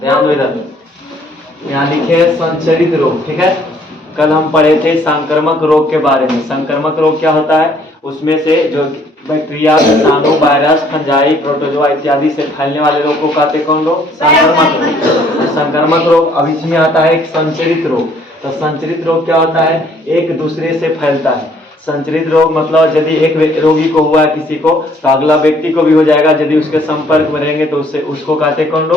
ध्यान दो इधर, यहाँ लिखे है संचरित रोग। ठीक है, कल हम पढ़े थे संक्रमक रोग के बारे में। संक्रमक रोग क्या होता है, उसमें से जो बैक्टीरिया, विषाणु, वायरस, फंजाई, प्रोटोजोआ इत्यादि से फैलने वाले रोग को कहते कौन रोग, संक्रमक रोग। संक्रमक रोग। अब इसमें आता है एक संचरित रोग। तो संचरित रोग क्या होता है, एक दूसरे से फैलता है। संचरित रोग मतलब यदि एक रोगी को हुआ है किसी को, तो अगला व्यक्ति को भी हो जाएगा। यदि उसके संपर्क में रहेंगे तो उससे उसको कहते कौन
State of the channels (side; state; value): both; normal; correlation 0.62